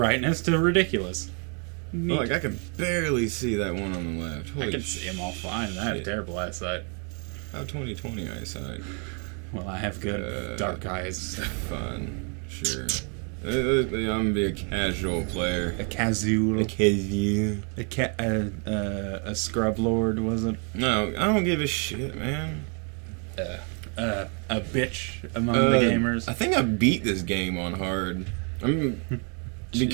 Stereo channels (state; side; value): quieter; left; 38.4 dB